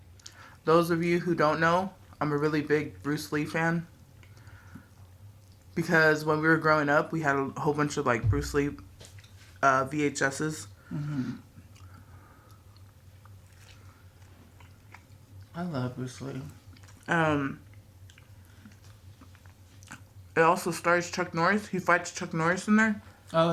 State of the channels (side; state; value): both; identical; correlation 1.00